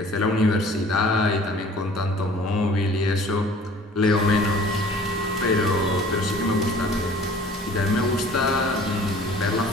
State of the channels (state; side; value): normal; both; correlation 0.49